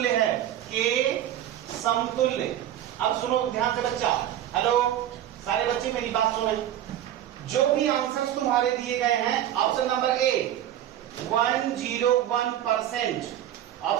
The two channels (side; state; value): left; quieter; 11.7 dB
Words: है, के समतुल्य। अब सुनो ध्यान से बच्चा, हेलो सारे बच्चे मेरी बात सुने। जो भी आंसर्स तुम्हारे दिए गए हैं, option number A 101%,